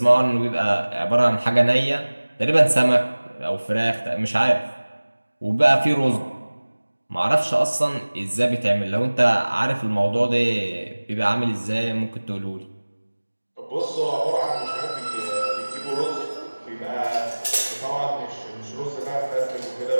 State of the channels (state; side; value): inverted; both; correlation -1.00